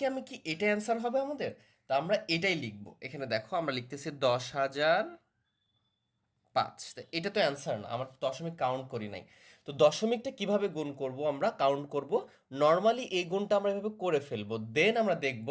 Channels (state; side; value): identical; both; correlation 1.00